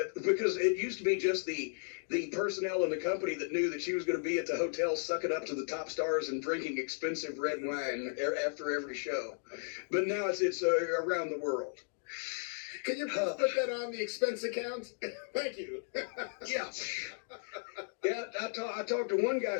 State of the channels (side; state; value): right; silent; 54 dB below the other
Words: because it used to be just the personnel in the company that knew that she was going to be at the hotel sucking up to the top stars and drinking expensive red wine after every show. But now it's around the world. Can you put that on the expense account? Thank you. Yeah. Yeah, I talked to one guy